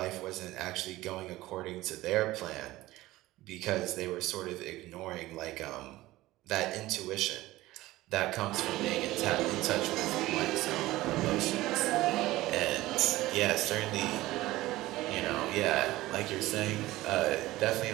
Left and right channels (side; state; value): left; quieter; 17.4 dB